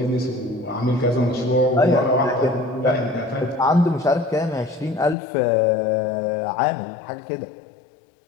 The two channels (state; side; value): drops out; right; at 5.2 s